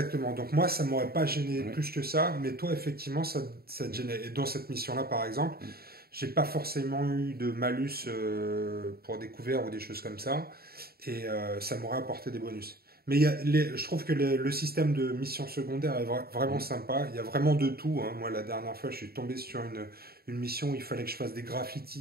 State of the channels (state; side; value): late; left; 0.45 ms